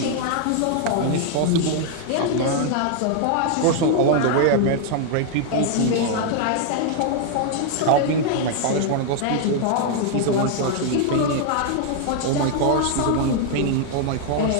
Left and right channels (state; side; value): different; both; correlation 0.00